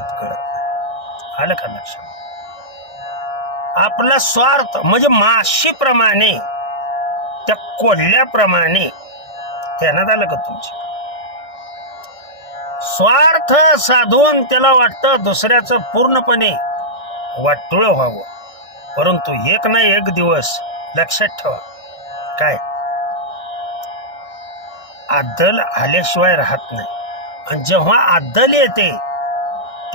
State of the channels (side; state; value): right; late; 1.6 ms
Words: कळत नाही. आलं का लक्षात? आपला स्वार्थ म्हणजे माशीप्रमाणे, त्या कोल्ह्याप्रमाणे. ध्यानात आलं का तुमच्या? स्वार्थ साधून त्याला वाटतं दुसऱ्याचं पूर्णपणे वाटोळ व्हावं, परंतु एक ना एक दिवस लक्षात ठेवा, काय आदल आल्याशिवाय राहत नाही. आणि जेव्हा आदल येते